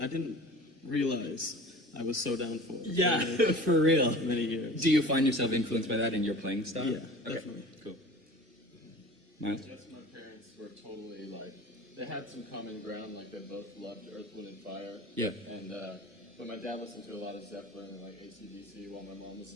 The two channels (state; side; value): normal; both; correlation 0.41